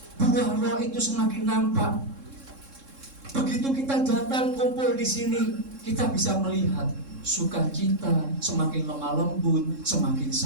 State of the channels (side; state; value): left; late; 3.7 ms